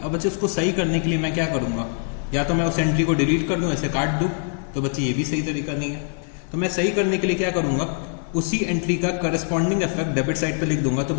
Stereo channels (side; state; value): right; silent; 57 dB below the other